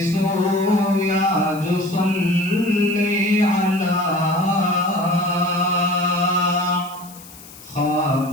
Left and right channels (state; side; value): noise; left; hiss, 19 dB below the sound